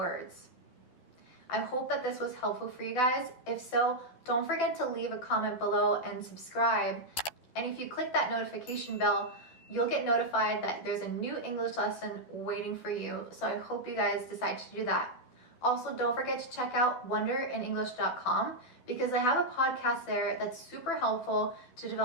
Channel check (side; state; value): right; late; 12 ms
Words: I hope that this was helpful for you guys. If so, don't forget to leave a comment below and subscribe. And if you click that notification bell, you'll get notified that there's a new English lesson waiting for you. So I hope you guys decide to do that. Also, don't forget to check out wonderinenglish.com because I have a podcast there that's super helpful to